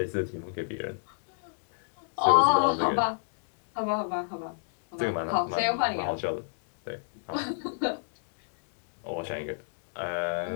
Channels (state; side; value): silent; right; digital silence